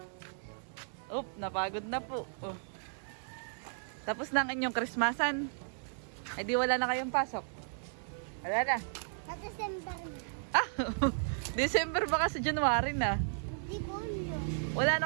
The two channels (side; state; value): left; silent; digital silence